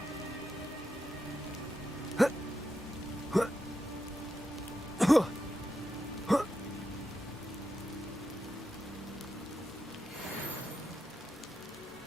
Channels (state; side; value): normal; both; correlation 0.87